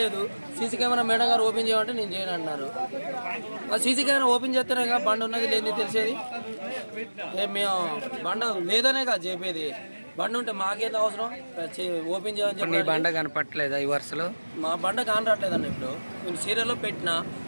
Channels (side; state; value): both; inverted; correlation -1.00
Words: లేదు. సీసీ కెమెరా మేడం గారు ఓపెన్ చేయమంటే నేను చేయను అంటున్నారు. సీసీ కెమెరా ఓపెన్ చేస్తేనే బండ ఉన్నది లేని తెలిసేది. మేము బండ లేదనే కదా చెప్పేది. బండి ఉంటే మాకేంత అవసరం ఓపెన్ చేయని చెప్పి. నీ బండ కనపట్లేదా ఈ వరుసలో? మా బండ కానరాట్లేదన్న. ఇప్పుడు నేను సీరియల్లో పెట్టినా